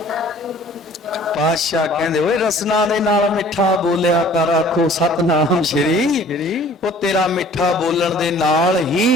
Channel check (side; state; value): both; normal; correlation 0.51